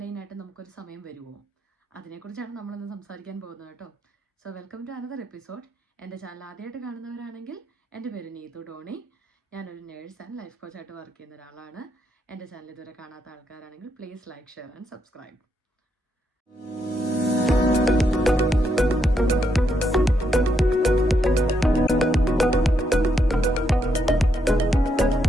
നമുക്കൊരു സമയം വരുമോ? അതിനെക്കുറിച്ചാണ് നമ്മളിന്ന് സംസാരിക്കാൻ പോകുന്നത് കേട്ടോ. So welcome to another episode. എൻ്റെ ചാനൽ ആദ്യമായിട്ട് കാണുന്നവരാണെങ്കിൽ എൻ്റെ പേര് നീതു ഡോണി. ഞാനൊരു നേഴ്സ് ആൻഡ് ലൈഫ് കോച്ചായിട്ട് വർക്ക് ചെയ്യുന്ന ഒരാളാണ്. എൻ്റെ ചാനൽ ഇതുവരെ കാണാത്ത ആൾക്കാരാണെങ്കിൽ please like, share and subscribe.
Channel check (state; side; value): normal; both; correlation 0.78